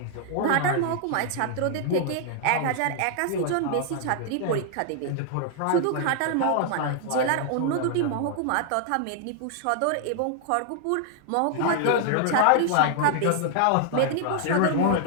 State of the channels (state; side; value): different; both; correlation 0.00